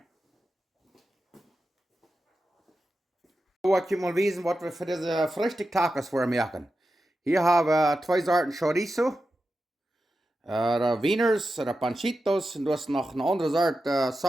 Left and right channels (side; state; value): both; normal; correlation 0.91